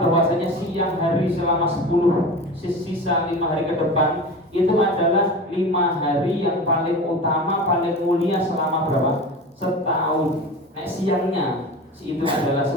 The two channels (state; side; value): normal; both; correlation 0.31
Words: siang hari selama 10 sisa 5 hari ke depan itu adalah 5 hari yang paling utama, paling mulia selama berapa? Setahun. Nek siangnya itu adalah